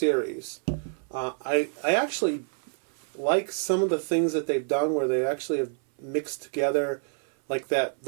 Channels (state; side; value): silent; left; 60 dB below the other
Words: I actually like some of the things that they've done where they actually have mixed together, like there